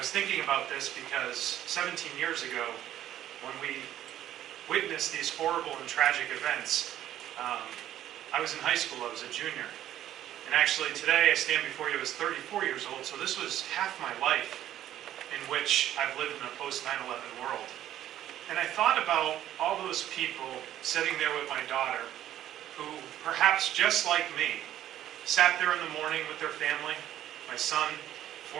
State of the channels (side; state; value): left; quieter; 12.2 dB